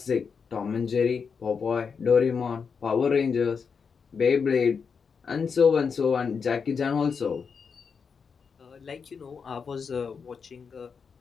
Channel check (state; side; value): quieter; right; 5.9 dB